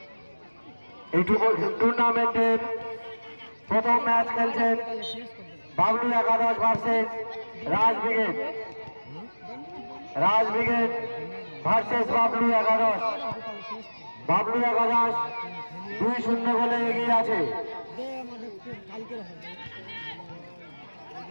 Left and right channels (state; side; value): inverted; both; correlation -1.00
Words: এই টুর্নামেন্টের প্রথম ম্যাচ খেলছেন বাবলু একাদশ ভার্সেস রাজ ব্রিগেড। রাজ ব্রিগেড ভার্সেস বাবলু একাদশ। বাবলু একাদশ 2-0 গোলে এগিয়ে আছে।